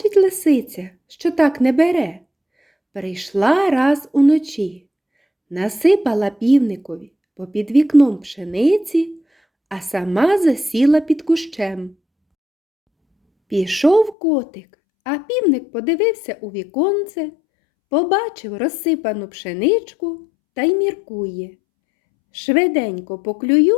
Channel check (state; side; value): drops out; right; at 14.2 s